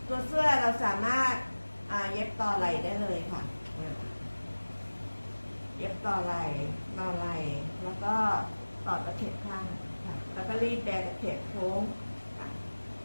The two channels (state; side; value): inverted; both; correlation -1.00